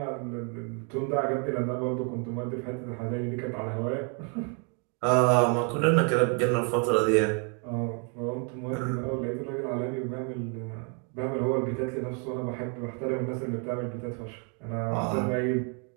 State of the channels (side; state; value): left; quieter; 38.2 dB